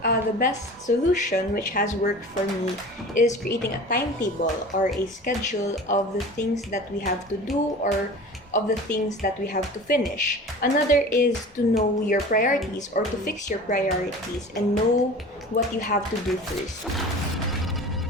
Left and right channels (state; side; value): normal; both; correlation 0.38